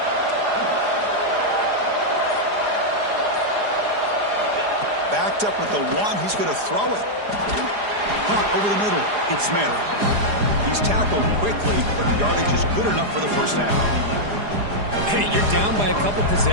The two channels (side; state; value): left; late; 4.9 ms